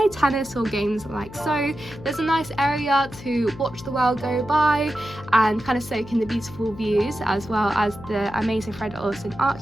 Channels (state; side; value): noise; left; hum, 16 dB below the sound